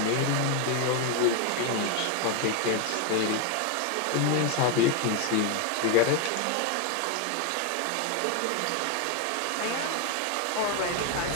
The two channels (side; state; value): both; different; correlation 0.01